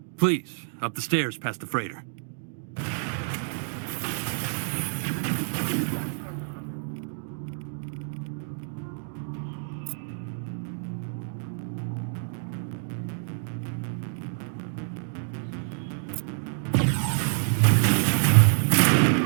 Please, up the stairs past the freighter.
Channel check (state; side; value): silent; left; digital silence